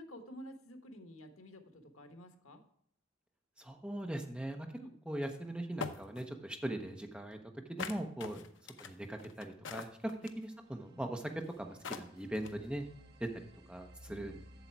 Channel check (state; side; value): normal; both; correlation 0.79